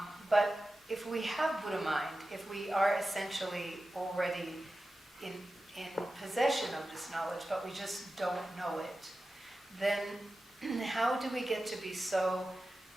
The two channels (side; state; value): both; normal; correlation 0.94